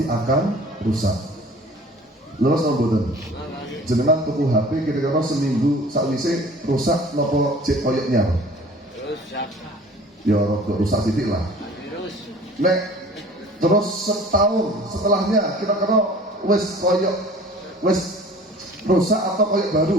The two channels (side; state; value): both; normal; correlation 0.47